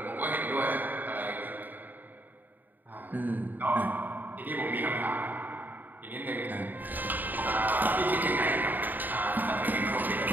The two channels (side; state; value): left; late; 0.088 ms